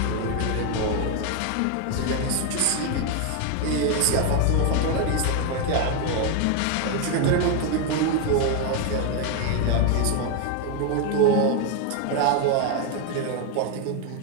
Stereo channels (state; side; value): different; both; correlation 0.01